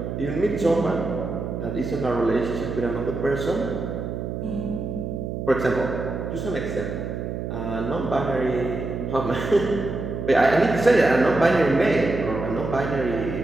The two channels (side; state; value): right; noise; hum, 5 dB below the sound